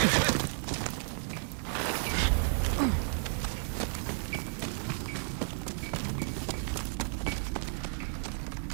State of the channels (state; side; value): silent; left; 56 dB below the other